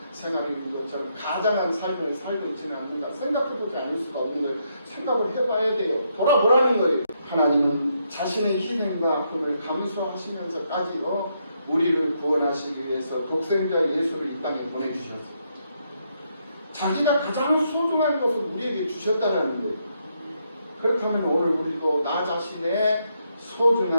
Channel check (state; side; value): inverted; both; correlation -0.77